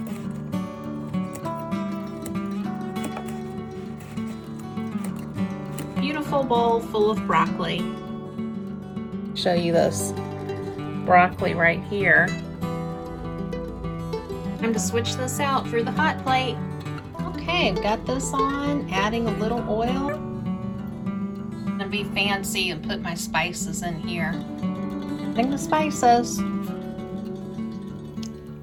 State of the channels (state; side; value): identical; both; correlation 1.00